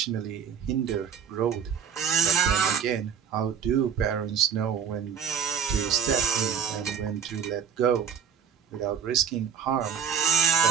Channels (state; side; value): quieter; left; 7.7 dB